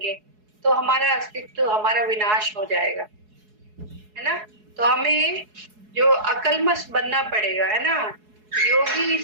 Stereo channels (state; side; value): late; left; 4.7 ms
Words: तो हमारा अस्तित्व, हमारा विनाश हो जाएगा, है ना। तो हमें जो अकल्मष बनना पड़ेगा, है ना।